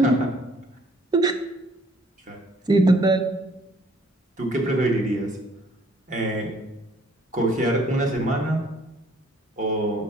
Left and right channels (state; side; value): normal; both; correlation 0.60